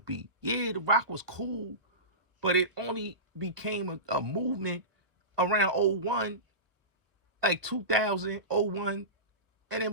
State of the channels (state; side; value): late; left; 1.3 ms